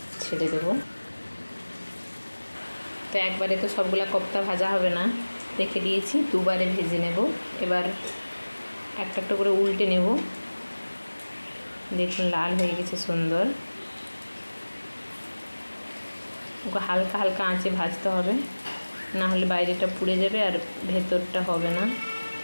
ছেড়ে দেব। তো একবারে তো সবগুলা কোফতা ভাজা হবে না, রেখে দিয়েছি, দুবারে ভেজে নেব। এবার একটা একটা করে উল্টে নেব। দেখুন লাল হয়ে গেছে সুন্দর। ওকে হালকা হালকা আঁচে ভাজতে হবে, না হলে বাইরেটা পুড়ে যাবে আর ভেতরটা হবে না।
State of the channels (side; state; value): both; inverted; correlation -1.00